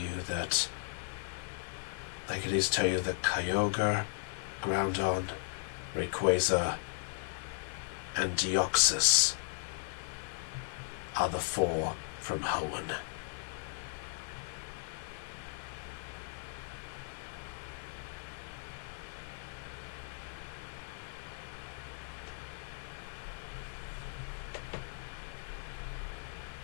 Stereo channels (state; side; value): silent; right; digital silence